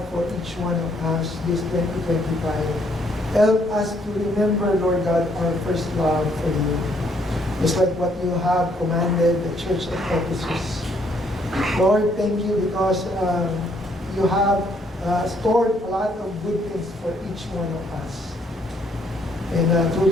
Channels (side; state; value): both; normal; correlation 0.68